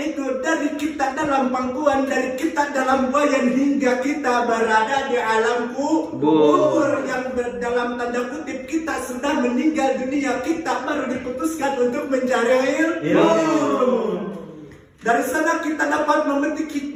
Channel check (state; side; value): identical; both; correlation 1.00